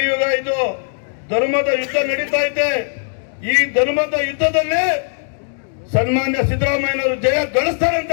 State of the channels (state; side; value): silent; right; 67 dB below the other